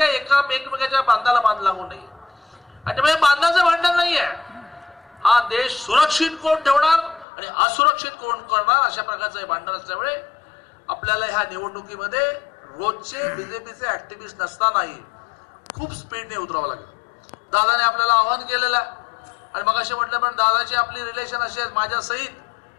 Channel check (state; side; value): drops out; right; at 7.2 s